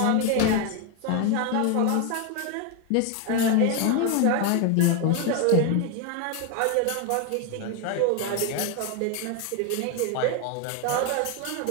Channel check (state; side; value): different; both; correlation 0.01